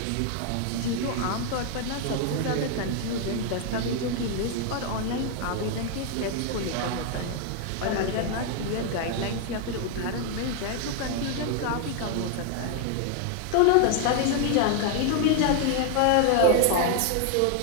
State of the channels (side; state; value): both; different; correlation 0.00